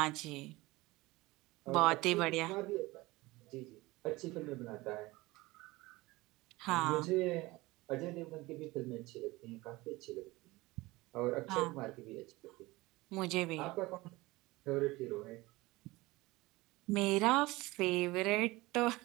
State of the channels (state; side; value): quieter; left; 20.8 dB